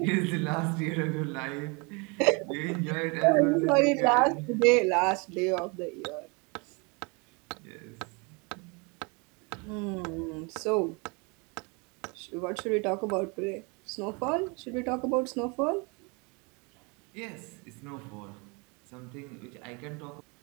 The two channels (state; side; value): quieter; left; 30.6 dB